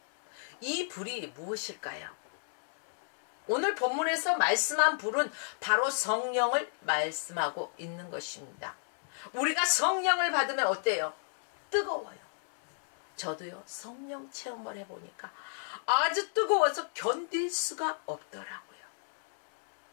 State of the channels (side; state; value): right; silent; digital silence